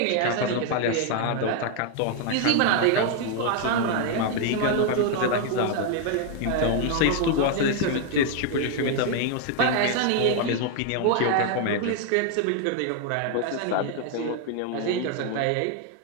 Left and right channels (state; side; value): different; both; correlation 0.00